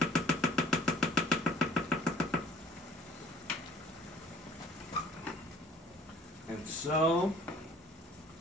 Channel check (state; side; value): normal; both; correlation 0.54